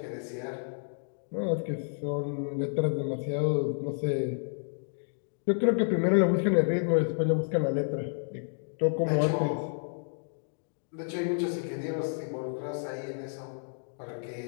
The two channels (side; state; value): right; silent; digital silence